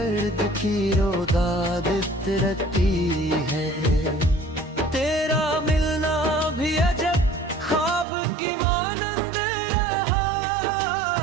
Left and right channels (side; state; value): left; drops out; at 8.1 s